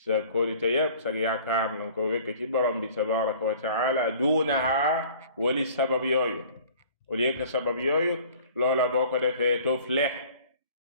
kóolite yépp sa yaakaar nanga ko wékk ci borom bi tabaraka wa taala, duunaha wali sabab yooyu. au lieu que sabab yooyu, loola boo ko defee tuflih,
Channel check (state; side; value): inverted; both; correlation -0.49